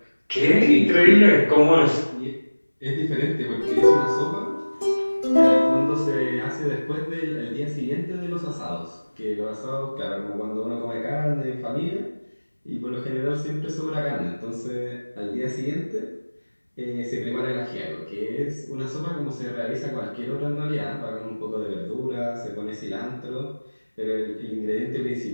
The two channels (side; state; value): both; inverted; correlation -1.00